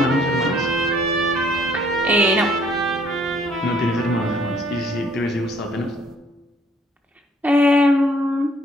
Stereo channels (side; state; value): both; normal; correlation 0.63